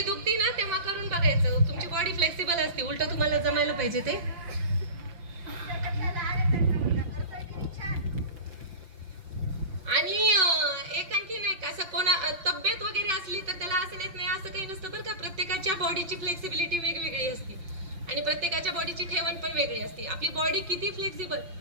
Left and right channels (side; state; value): left; late; 5.8 ms